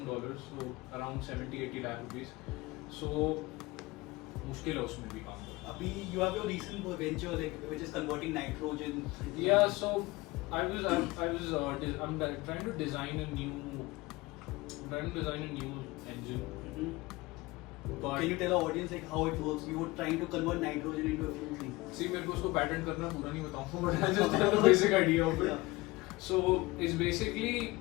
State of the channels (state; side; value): quieter; right; 21.5 dB